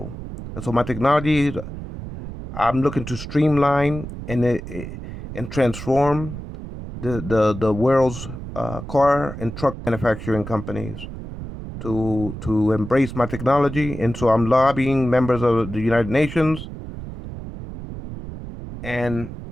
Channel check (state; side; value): noise; right; rumble, 10 dB below the sound